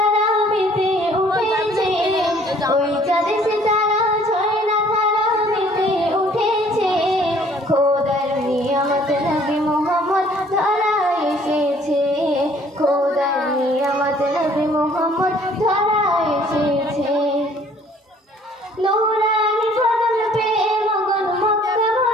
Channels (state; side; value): normal; both; correlation 0.57